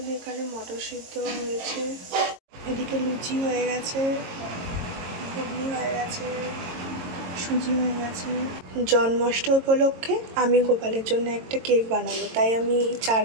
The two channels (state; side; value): late; left; 22 ms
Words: এখানে মটর সিদ্ধ হয়েছে, এদিকে লুচি হয়ে গেছে, ঘুগনি হয়ে গেছে, সুজি হয়ে গেছে। জন্মাষ্টমী উপলক্ষে আমি গোপালের জন্য একটা কেক বানাবো, তাই আমি 4